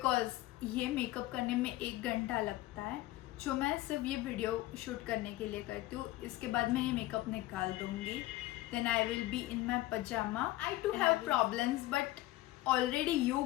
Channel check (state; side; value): quieter; right; 17.0 dB